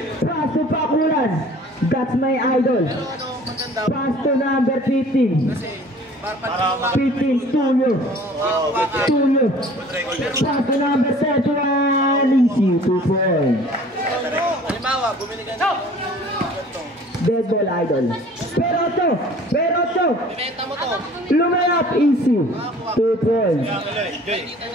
Pass to Pakulan. That's my idol. Pass to number 15. 15, Tulio. Pass to number 31. Easy, 2 points. Halimbawa, bumili ka ng Dead ball idol. Perocho. ibenta mo to. Lumayap, easy. 2 points.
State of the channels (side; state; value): both; normal; correlation 0.49